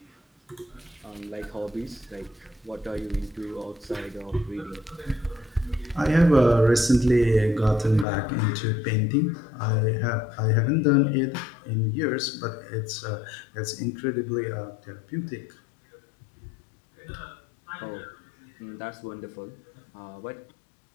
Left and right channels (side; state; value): right; drops out; at 8.1 s